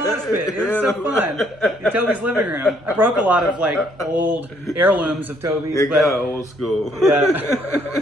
mosh pit. It was so fun in Toby's living room. I broke a lot of like old heirlooms of Toby's. It got old school. Yeah.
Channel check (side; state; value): right; noise; hum, 29 dB below the sound